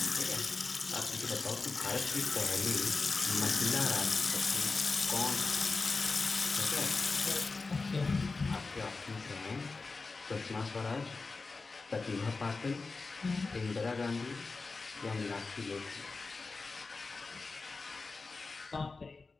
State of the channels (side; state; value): right; quieter; 4.0 dB